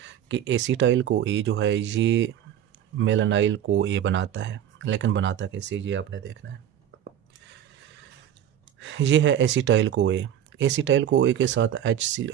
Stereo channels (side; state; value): left; quieter; 10.3 dB